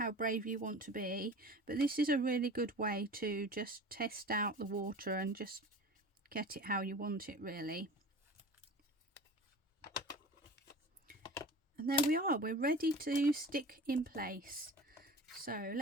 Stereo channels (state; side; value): normal; both; correlation 0.38